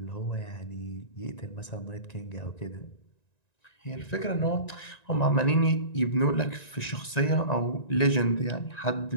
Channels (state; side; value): late; right; 1.9 ms